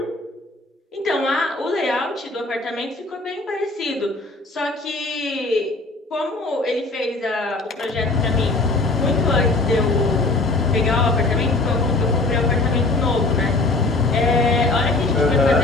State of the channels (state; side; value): quieter; right; 3.2 dB